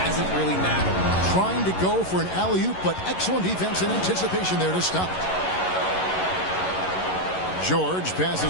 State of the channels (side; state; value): right; late; 11 ms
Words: really mattered. Trying to go for an alley-oop, but excellent defense and anticipation there to stop it. George